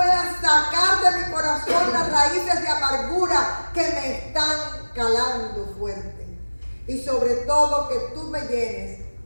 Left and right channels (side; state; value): both; inverted; correlation -1.00